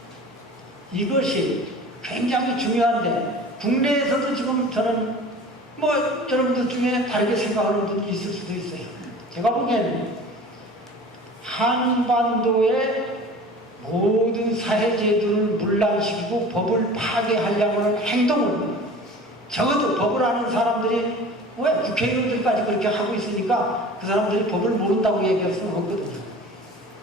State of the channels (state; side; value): normal; both; correlation 0.41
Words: 이것이 굉장히 중요한데 국내에서도 지금 저는 여러분들 중에 다르게 생각하는 분이 있을 수도 있어요. 제가 보기에는 한반도의 모든 사회제도를 문란시키고 법을 파괴하려고 하는 행동을 적어도 법을 아는 사람들이 왜 국회의원들까지 그렇게 하고 있으니까 그 사람들이 법을 모른다고 얘기할 수는 없거든요.